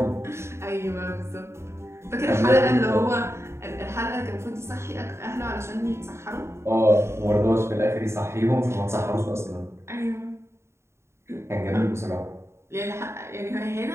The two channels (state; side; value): late; left; 0.13 ms